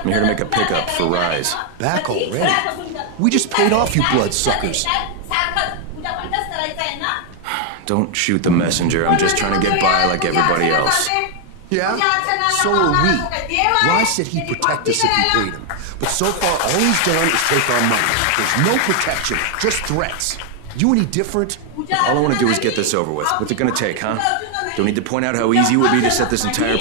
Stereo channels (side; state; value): both; different; correlation 0.01